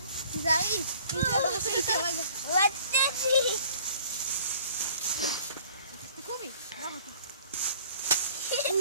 תיזהרי. אם זה בראש איתי הרגע. רציתי. תקומי. לא רוצה.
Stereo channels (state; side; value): inverted; both; correlation -0.54